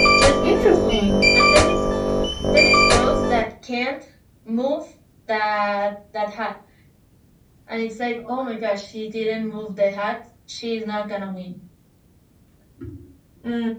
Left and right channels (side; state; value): both; identical; correlation 1.00